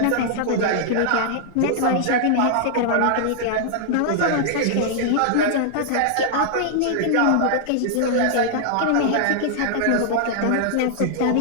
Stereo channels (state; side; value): different; both; correlation -0.01